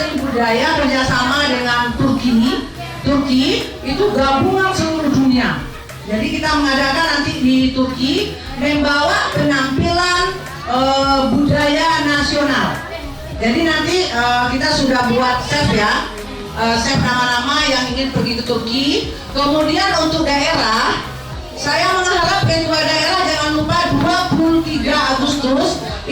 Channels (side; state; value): both; identical; correlation 1.00